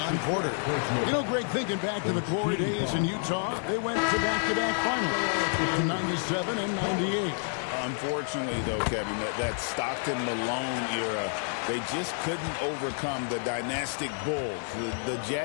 Porter. You know, Greg, thinking back to the glory days in Utah, they went to back-to-back finals in 97 and 98. Unfortunately, though, Kevin, that Stockton-Malone era, they just couldn't overcome the dynastic Bulls. The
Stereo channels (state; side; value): silent; right; 58 dB below the other